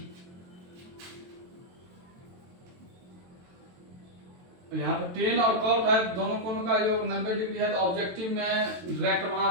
यहाँ पे टेन और कॉट है, दोनों कोनों का योग 90 डिग्री है, तो ऑब्जेक्टिव में डायरेक्ट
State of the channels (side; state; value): left; late; 22 ms